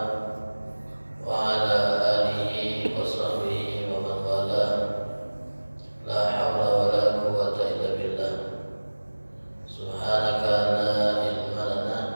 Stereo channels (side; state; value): both; inverted; correlation -1.00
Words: wa ala alihi wa sahbihi wa man wala. La hawla wa la quwwata illa billah. Subhanaka la ilma lana